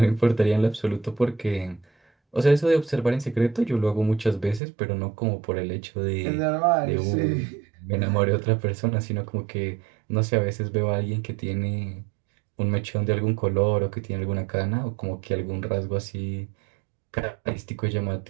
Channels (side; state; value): left; drops out; at 4.6 s